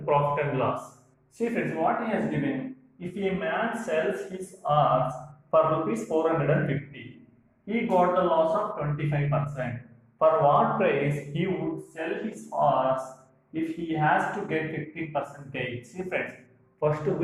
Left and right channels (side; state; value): both; identical; correlation 1.00